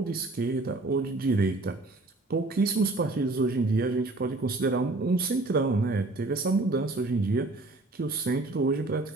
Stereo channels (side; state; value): left; quieter; 3.0 dB